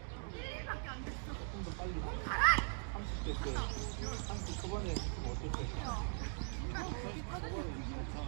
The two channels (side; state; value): left; silent; 51 dB below the other